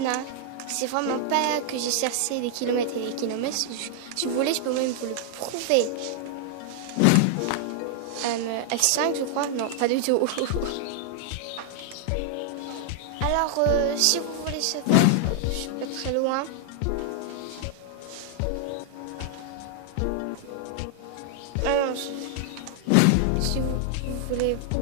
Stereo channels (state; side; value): different; both; correlation 0.00